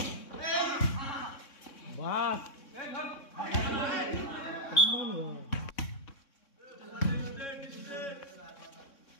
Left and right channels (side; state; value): right; late; 3.6 ms